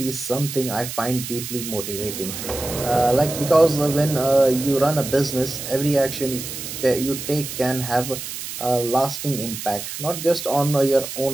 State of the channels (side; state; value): right; noise; hiss, 8 dB below the sound